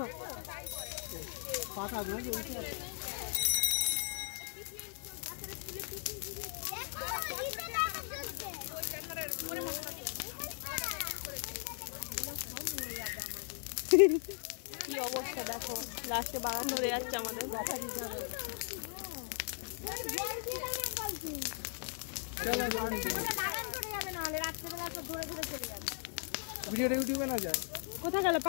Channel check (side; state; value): right; silent; 53 dB below the other